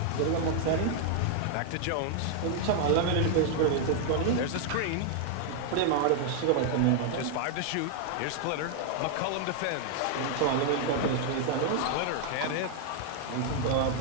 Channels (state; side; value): different; both; correlation 0.00